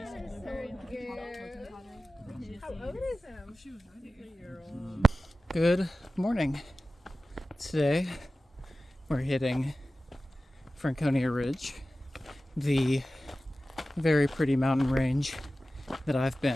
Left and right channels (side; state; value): both; normal; correlation 0.95